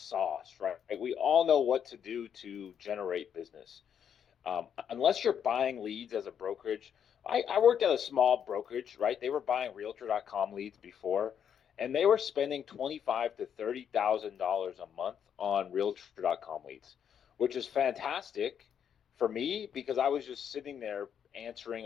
right? We all know what to do to generate business. Unless you're buying leads as a brokerage, I worked at a small brokerage, right? They were buying Realtor.com leads before, and they were spending 25 to $30,000 a month on Realtor.com leads, which is fantastic for me because I was just sitting there answering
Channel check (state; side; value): quieter; right; 8.4 dB